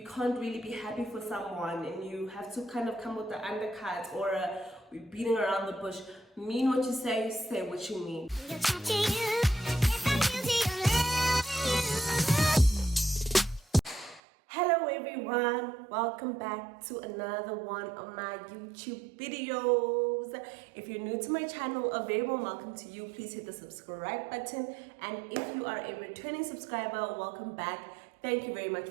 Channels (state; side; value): drops out; left; at 14.2 s